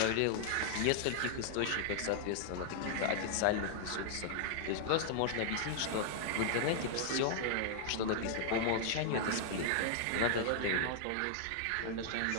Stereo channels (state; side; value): different; both; correlation -0.01